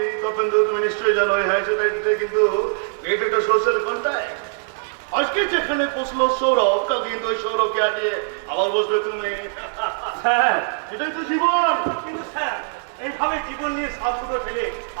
তপেন্দ্র? তুমি নিশ্চয়ই জানো এই হাই সোসাইটিতে কিন্তু এটা একটা সোশ্যাল কন্ট্যাক্ট। আজকে যেখানে বসলো সৌরভ, কালকে কিন্তু ওই সৌরভকে হাঁটিয়ে আবার বসবে তুমি। স্যার, এটাই তো জীবন। কিন্তু স্যার, এইভাবে জীবন নিয়ে সাবুটো ফেলে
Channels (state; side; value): silent; left; 64 dB below the other